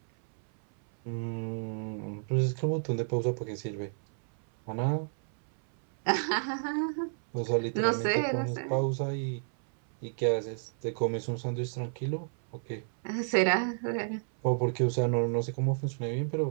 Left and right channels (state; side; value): silent; left; 57 dB below the other